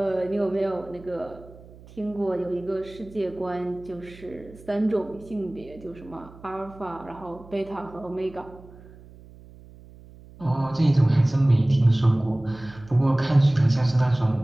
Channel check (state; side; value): noise; right; hum, 21 dB below the sound